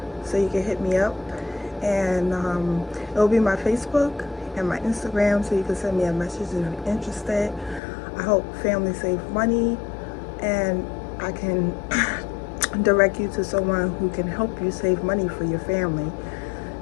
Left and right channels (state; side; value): drops out; right; at 7.8 s